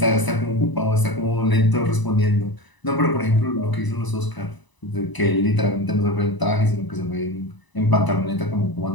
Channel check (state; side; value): late; right; 1.0 ms